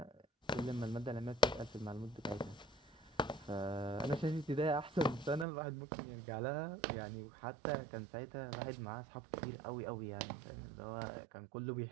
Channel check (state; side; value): drops out; left; at 5.5 s